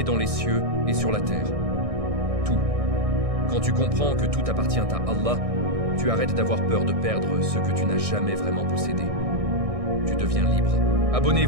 dans les cieux et sur la terre. Tout. Quand tu comprends que tout appartient à Allah, tu arrêtes d'avoir peur de perdre ce que tu n'as jamais vraiment possédé. Tu deviens libre.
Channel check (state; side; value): late; left; 1.6 ms